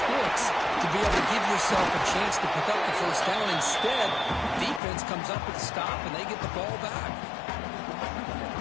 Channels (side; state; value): right; drops out; at 4.8 s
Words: to be able to give yourself a chance to pick up the first down. Instead, defense comes up with a stop and they get the ball back.